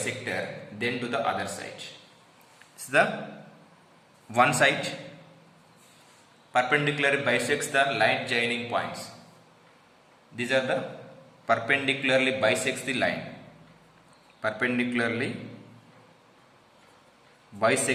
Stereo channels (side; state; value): both; identical; correlation 1.00